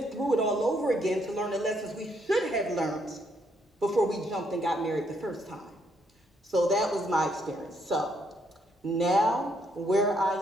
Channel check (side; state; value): both; normal; correlation 0.72